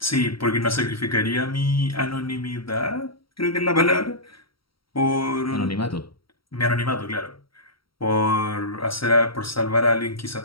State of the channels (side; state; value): right; late; 0.74 ms